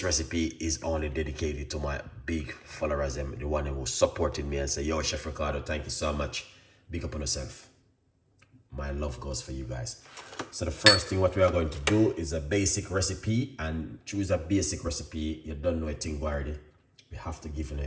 recipe is only dedicated to my big followers, the one who supported me and say, yo, Chef Ricardo, thank you so much. Big up on yourself. My love goes for you guys. So the first thing what we are going to do is a basic recipe, and choose a basic recipe. You don't know a thing already. We have to give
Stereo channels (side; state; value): both; identical; correlation 1.00